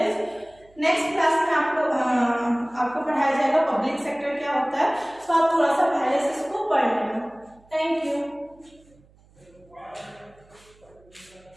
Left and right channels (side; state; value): right; noise; hum, 29 dB below the sound